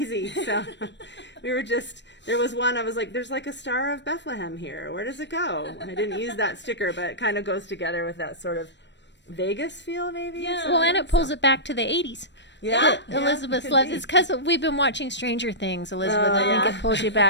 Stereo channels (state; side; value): late; right; 0.52 ms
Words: So we were just, there was one, I was like, there's like a Star of Bethlehem here. Where does it go? I didn't use that sticker, but it kind of goes together with that sort of Vegas feel, maybe. Yeah. Well, and it pulls it back to the 80s. Yeah. Elizabeth loves it's because we've been watching Stranger Things, Elizabeth. Oh, I think yeah. it pulls you